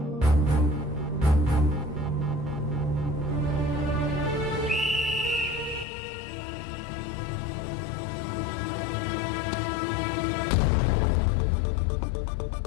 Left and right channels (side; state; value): right; drops out; at 5.9 s